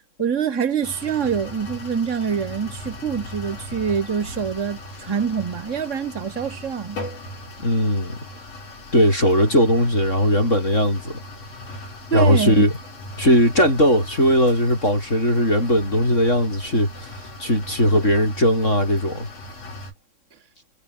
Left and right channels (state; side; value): late; right; 3.6 ms